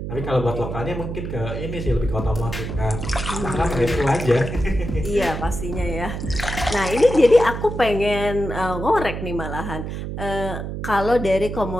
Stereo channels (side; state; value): right; noise; hum, 6 dB below the sound